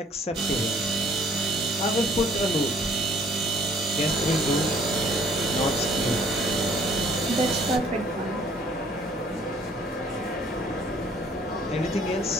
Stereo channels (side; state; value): both; normal; correlation 0.58